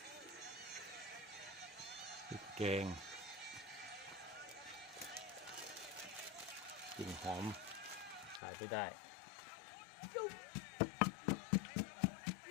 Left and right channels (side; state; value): right; drops out; at 8.4 s